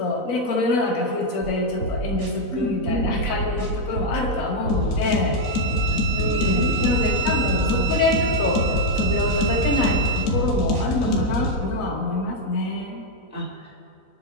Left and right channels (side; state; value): right; late; 4.0 ms